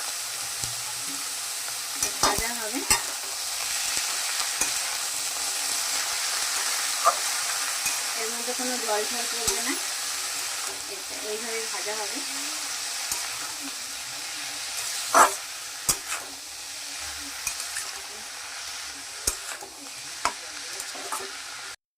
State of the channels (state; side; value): identical; both; correlation 1.00